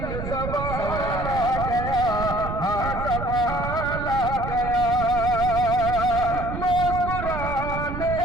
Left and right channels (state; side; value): noise; right; rumble, 6 dB below the sound